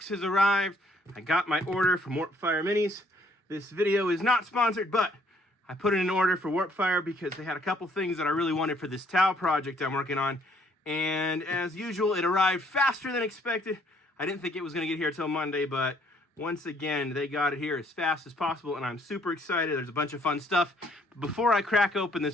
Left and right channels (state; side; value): normal; both; correlation 0.65